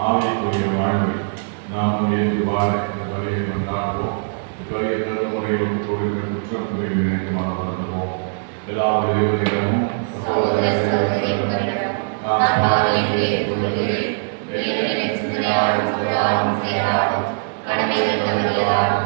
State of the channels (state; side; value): silent; left; digital silence